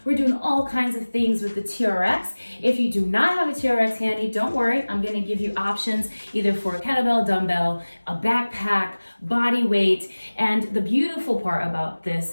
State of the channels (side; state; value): both; inverted; correlation -1.00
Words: We're doing all kinds of things with the TRX. If you do not have a TRX handy, don't worry. I'm going to give you options either for a kettlebell, dumbbell, a backpack, body weight. And the beautiful part about this